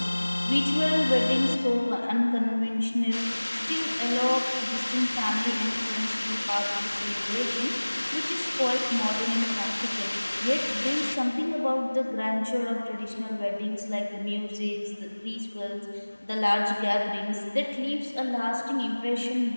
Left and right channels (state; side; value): inverted; both; correlation -1.00